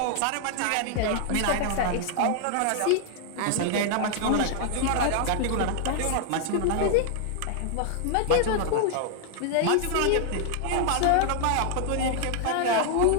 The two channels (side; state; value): both; different; correlation 0.00